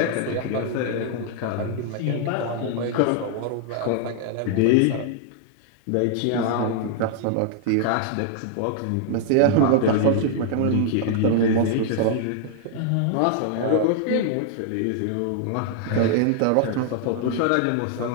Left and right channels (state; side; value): different; both; correlation 0.00